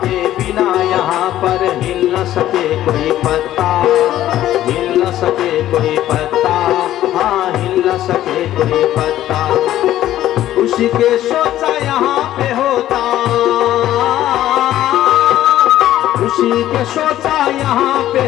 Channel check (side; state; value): right; quieter; 13.2 dB